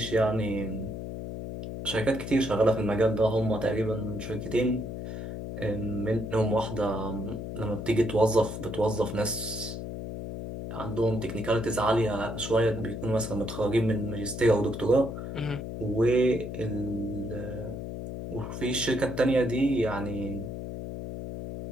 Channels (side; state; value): left; noise; hum, 7 dB below the sound